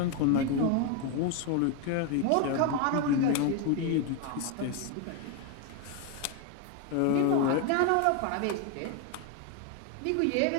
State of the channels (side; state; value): both; different; correlation 0.01